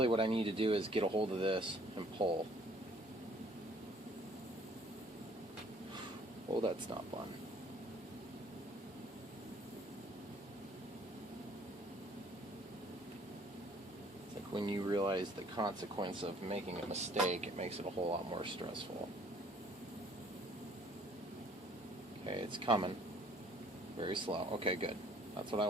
what I need to do is get a hold of this and pull. Oh, that's not fun. It's like when you realize the consequence of making a mistake, it makes it a whole lot more stressful. Okay, it's coming. Very slow. Okay, good. That's what I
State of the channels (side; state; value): both; normal; correlation 0.58